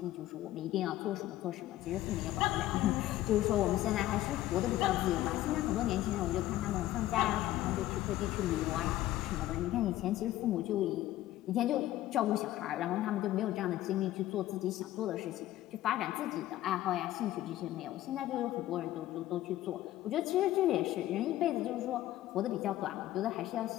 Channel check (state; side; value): quieter; right; 14.7 dB